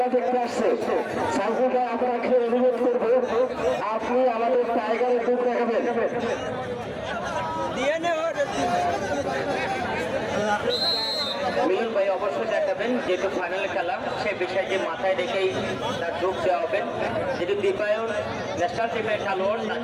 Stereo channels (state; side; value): identical; both; correlation 1.00